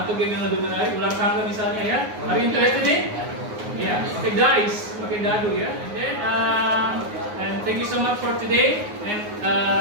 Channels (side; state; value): left; late; 9.6 ms